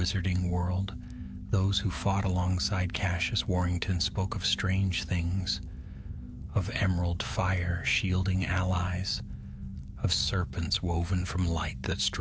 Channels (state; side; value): identical; both; correlation 1.00